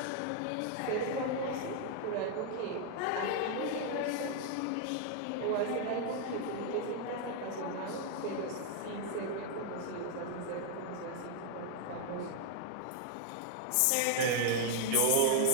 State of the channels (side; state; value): both; different; correlation 0.00